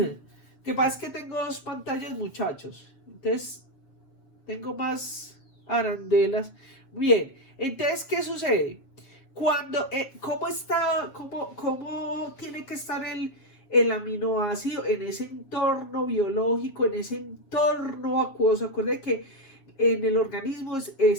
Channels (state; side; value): late; right; 7.4 ms